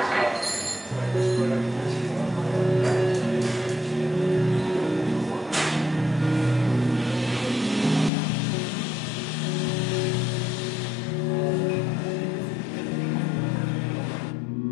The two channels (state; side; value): drops out; right; at 8.1 s